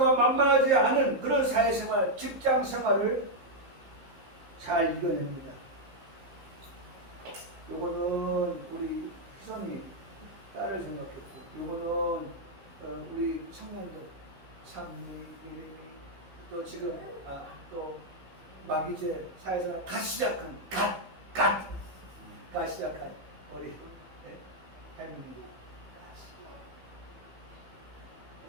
만만하지 않은 그런 사회생활, 직장생활을 잘 이겨냅니다. 요거는 우리 희선이 딸을 생각했고, 요거는 우리 청년들, 상미, 이름이 또 지금 또 막 이제 사회생활 갓 시작한 시작한 우리 혜민이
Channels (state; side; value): late; left; 15 ms